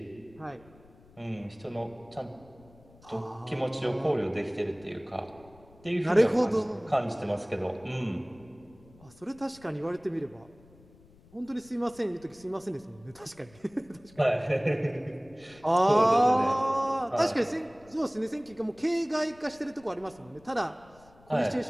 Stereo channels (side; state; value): left; noise; rumble, 26 dB below the sound